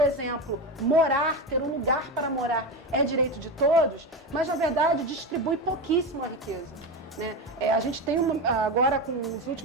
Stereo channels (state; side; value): normal; both; correlation 0.19